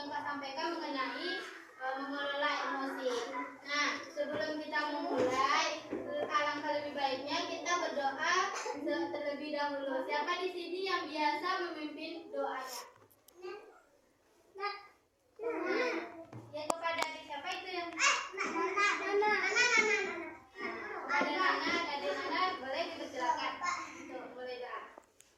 Kak sampaikan mengenai mengelola emosi. Nah, sebelum kita memulai, alangkah lebih baiknya kita berdoa terlebih dahulu. Siapa di sini yang biasa memimpin doanya? Ya kepada adik siapa itu yang? Kepada Nana, adik Nana boleh dipersilakan. Tuh, boleh doa.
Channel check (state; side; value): identical; both; correlation 1.00